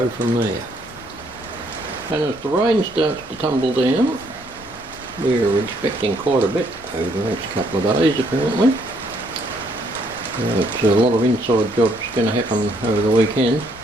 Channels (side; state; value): left; noise; rumble, 22 dB below the sound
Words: from there. And as the rain starts to tumble down, we're expecting quite a bit over the next couple of days apparently. It's a lot of inside jobs going to happen over the weekend.